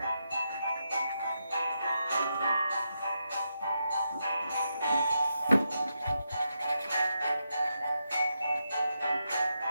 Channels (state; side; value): inverted; both; correlation -0.84